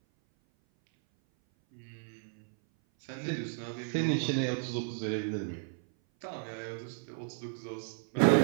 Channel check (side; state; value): left; silent; 55 dB below the other